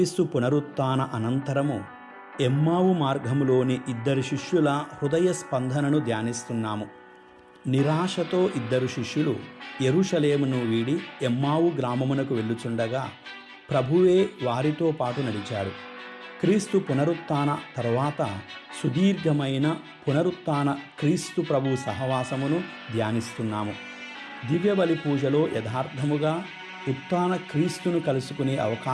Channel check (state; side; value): identical; both; correlation 1.00